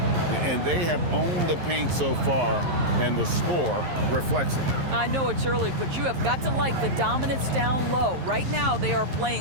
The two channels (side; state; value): left; late; 11 ms